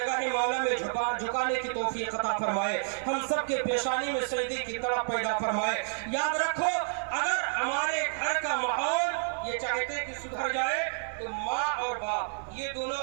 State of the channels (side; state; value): left; silent; digital silence